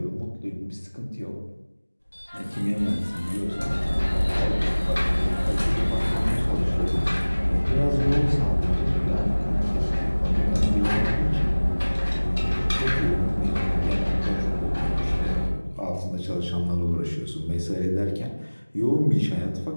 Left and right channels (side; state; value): both; inverted; correlation -1.00